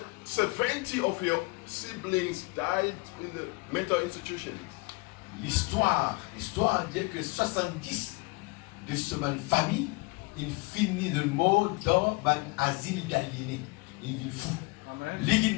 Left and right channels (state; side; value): quieter; right; 26.3 dB